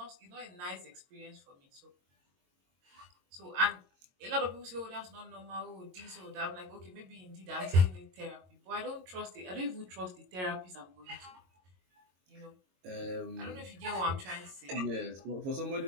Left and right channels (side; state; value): left; late; 22 ms